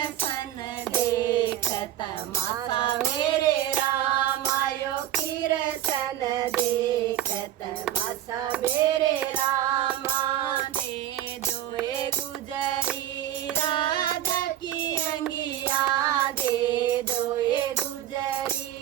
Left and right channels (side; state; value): left; quieter; 12.6 dB